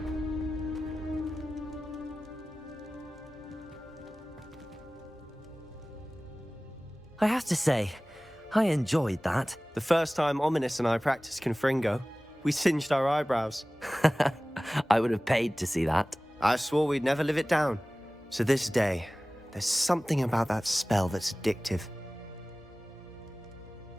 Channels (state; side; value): normal; both; correlation 0.98